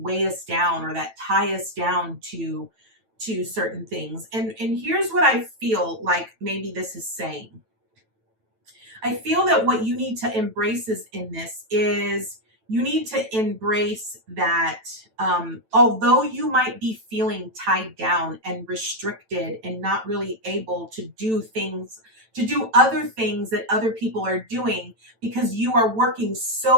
us down or that tie us down to certain things. And here's what I feel like maybe this is saying. I feel that what you need to embrace in this is you need to embrace that although you might be feeling tied down and restricted and not really able to do other things that other people are doing because you are working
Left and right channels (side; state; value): left; late; 9.0 ms